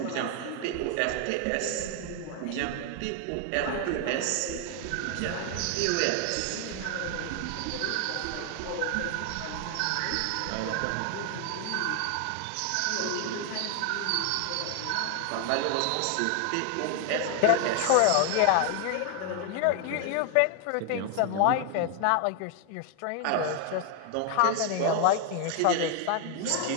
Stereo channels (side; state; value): both; different; correlation 0.00